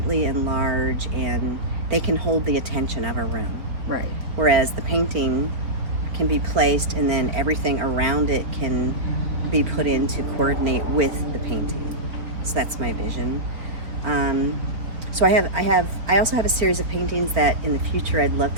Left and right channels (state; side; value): late; left; 4.1 ms